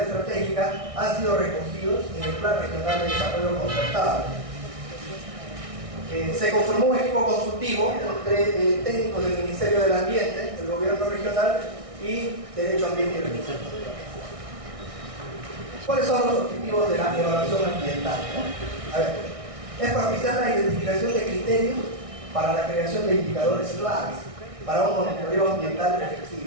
han sido recogidos en el Plan Regional de Desarrollo Concertado. Se conformó un equipo consultivo entre técnicos del Ministerio del Ambiente, el Gobierno Regional y Derecho Ambiente y Recursos Naturales. ¿Cuáles son los objetivos de la evaluación ambiental, ¿no? A ver, es propiciar la identificación de criterios para la creación de indicadores claves para un monitoreo ambiental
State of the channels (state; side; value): late; left; 1.6 ms